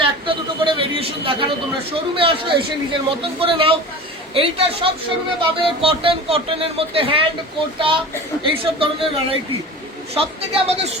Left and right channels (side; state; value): both; normal; correlation 0.35